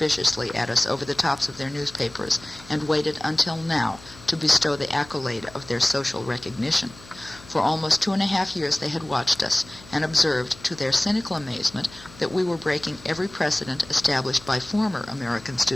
at us over the tops of their newspapers and waited until now to bestow the accolade of their social recognition. For almost 2.5 years they had watched us and observed, to their cynical amazement, that we were breaking every precedent established by former American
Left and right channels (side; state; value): left; noise; hum, 20 dB below the sound